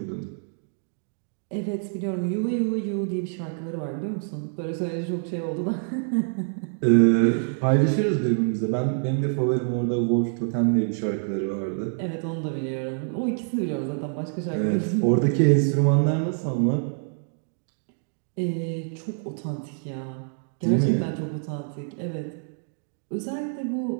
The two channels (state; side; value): silent; left; digital silence